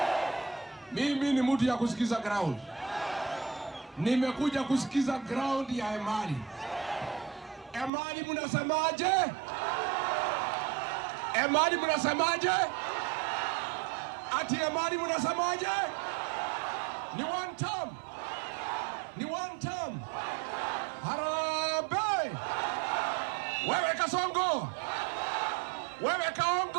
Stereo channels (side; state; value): left; drops out; at 7.9 s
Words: Mimi ni mtu ya kusikiza ground. Nimekuja kusikiza ground ya Emali. Emali mnasemaje? Emali mnasemaje? Ati Emali mnasemaje? Ni one term. Ni one term. Harambee! Wewe Kasongo! Wewe